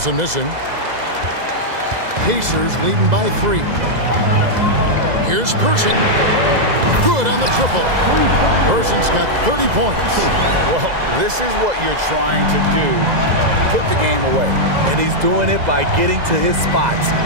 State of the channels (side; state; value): left; late; 2.0 ms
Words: missing. Pacers leading by 3. Here's Person. Good on the triple. Person's got 30 points. Well, this is what you're trying to do. Put the game away. And he's doing it by getting to his spots